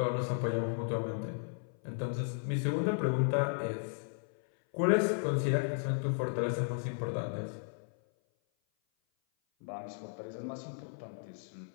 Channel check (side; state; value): right; silent; 55 dB below the other